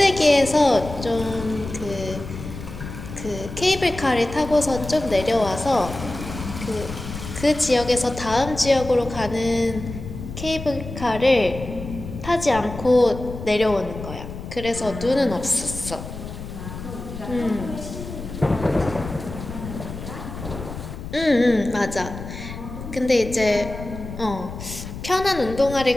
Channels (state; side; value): noise; left; rumble, 10 dB below the sound